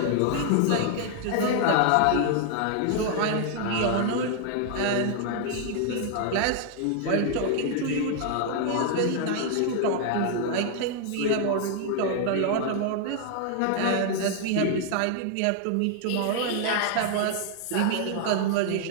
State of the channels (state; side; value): different; both; correlation 0.00